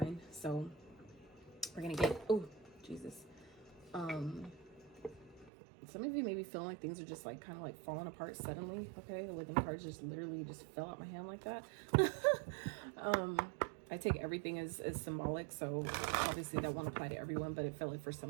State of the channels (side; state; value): left; drops out; at 5.5 s